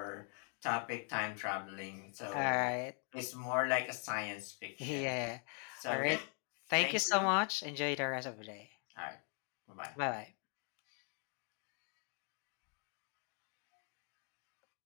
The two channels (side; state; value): right; quieter; 38.4 dB